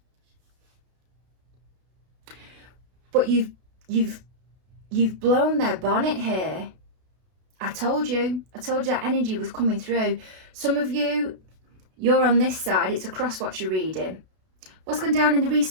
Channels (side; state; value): left; late; 32 ms